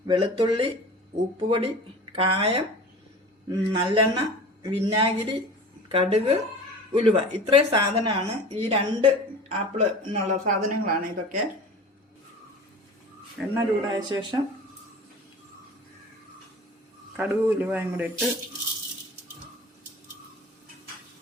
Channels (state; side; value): normal; both; correlation 0.38